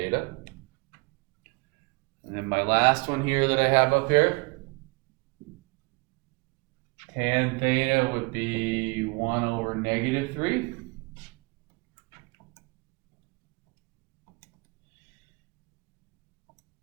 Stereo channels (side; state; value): left; quieter; 28.2 dB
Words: And then my last one here that I have up here, tan theta would be 1 over negative 3.